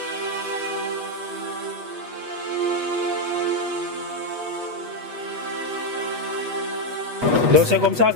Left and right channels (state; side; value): late; left; 8.2 ms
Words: Donc c'est comme ça